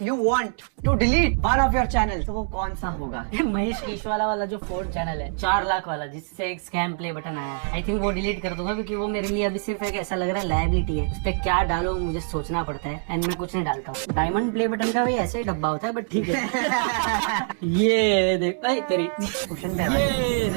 you want to delete one of your channel, तो वो कौन सा होगा? महेश कीशवाला वाला जो 4th चैनल है, 4 लाख वाला, जिससे एक स्कैम प्ले बटन आया है, आई थिंक वो डिलीट कर दूंगा, क्योंकि वो मेरे लिए अभी सिर्फ एक ऐसा लग रहा है लायबिलिटी है। उस पर क्या डालो मुझे सोचना पड़ता है, एंड मैं कुछ नहीं डालता हूँ। डायमंड प्ले बटन का भी ऐसे ही डब्बा होता है, बट ठीक है। ये देख तेरी क्वेश्चन ये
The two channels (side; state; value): left; silent; 62 dB below the other